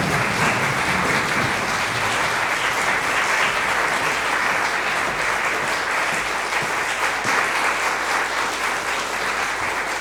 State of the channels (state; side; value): identical; both; correlation 1.00